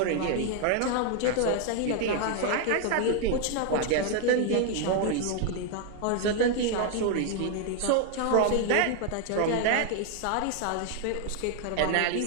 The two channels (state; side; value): different; both; correlation 0.00